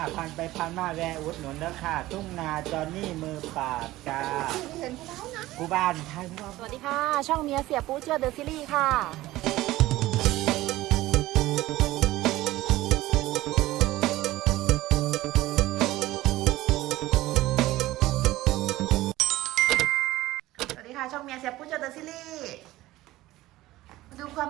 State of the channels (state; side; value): quieter; left; 17.0 dB